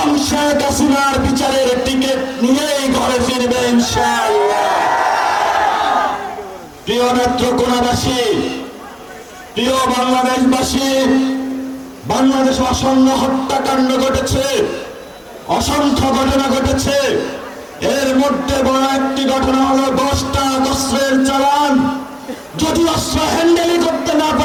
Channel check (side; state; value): both; identical; correlation 1.00